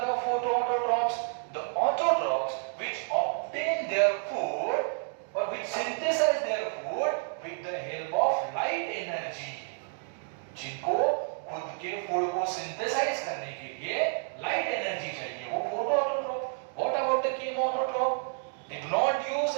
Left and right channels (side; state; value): left; silent; 58 dB below the other